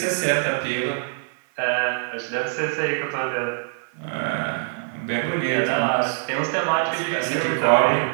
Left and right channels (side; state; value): left; silent; 58 dB below the other